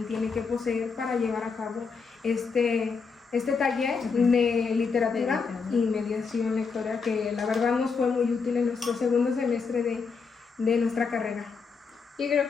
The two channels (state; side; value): quieter; right; 5.2 dB